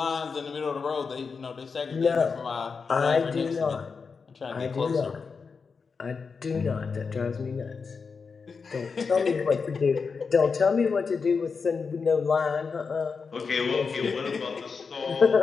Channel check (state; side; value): quieter; right; 5.2 dB